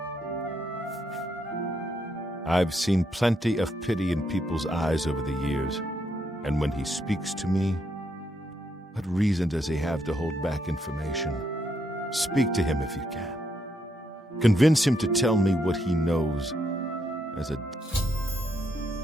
I've seen plenty of pity in people's eyes over the years, and when he speaks to me, what reason does he have to hold back information? Speak to him if you can. Convince him to tell me what he knows as a...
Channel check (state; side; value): normal; both; correlation 0.77